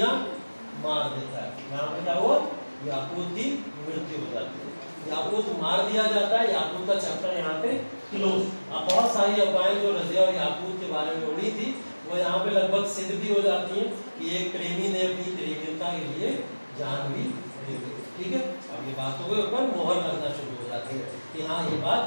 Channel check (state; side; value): inverted; both; correlation -1.00